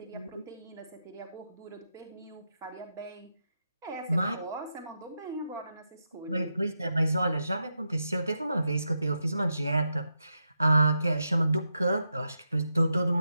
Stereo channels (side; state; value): both; inverted; correlation -0.86